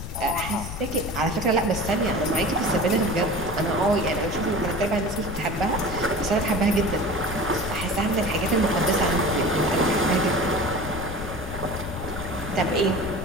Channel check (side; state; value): left; noise; rumble, 8 dB below the sound